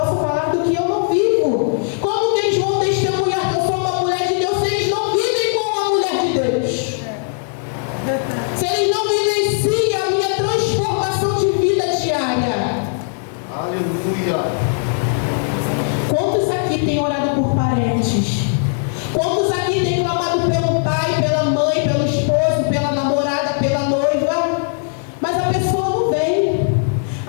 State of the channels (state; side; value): silent; right; 60 dB below the other